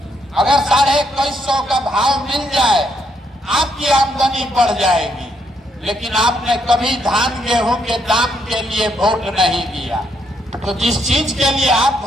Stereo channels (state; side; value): normal; both; correlation 0.75